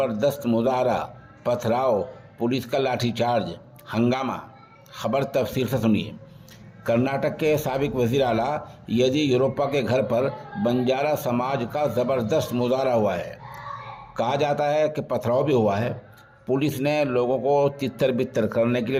مظاہرہ، پتھراؤ، پولیس کا لاٹھی چارج، ہنگامہ۔ خبر تفصیل سے سنیے۔ کرناٹک کے سابق وزیر اعلیٰ یدیورپا کے گھر پر بنجارا سماج کا زبردست مظاہرہ ہوا ہے۔ کہا جاتا ہے کہ پتھراؤ بھی ہوا ہے۔ پولیس نے لوگوں کو تتر بتر کرنے کے لیے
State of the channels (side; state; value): both; identical; correlation 1.00